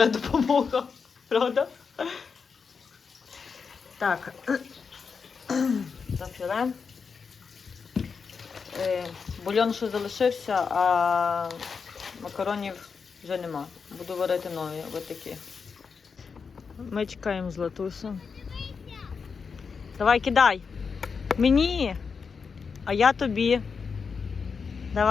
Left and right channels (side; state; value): right; quieter; 5.6 dB